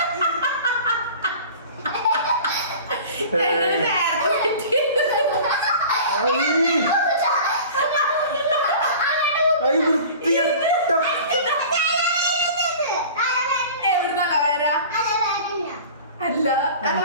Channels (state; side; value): inverted; both; correlation -0.41